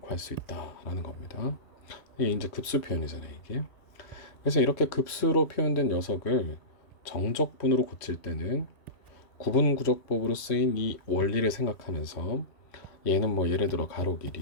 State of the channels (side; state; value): right; late; 3.1 ms